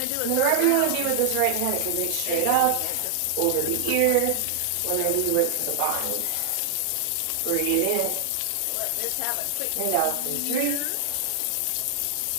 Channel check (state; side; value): different; both; correlation 0.00